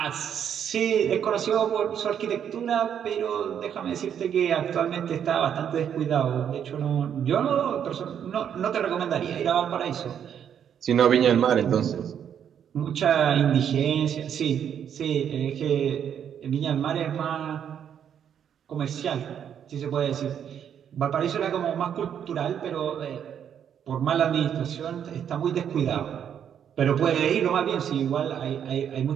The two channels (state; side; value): quieter; left; 8.7 dB